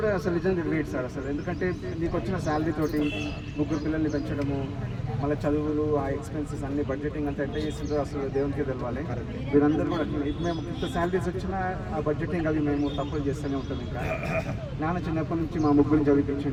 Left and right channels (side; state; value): both; identical; correlation 1.00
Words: అసలు నిజంగా గ్రేట్ సార్. అసలు ఎందుకంటే మీకు వచ్చిన శాలరీ తోటి 3 పిల్లల్ని పెంచడము, మళ్ళీ చదువులు, ఆ ఎక్స్పెన్సెస్ అన్ని బడ్జెటింగ్ అంతా ఎంత చేసిందో అసలు దేవునికి తెలవాలి. మీరందరూ కూడా ఇప్పుడు మేము ఇంత శాలరీస్ వచ్చినా ఆ బడ్జెటింగ్ అవి మేము తప్పులు చేస్తూనే ఉంటాం. ఇంకా నాన్న చిన్నప్పటి నుంచి మా 3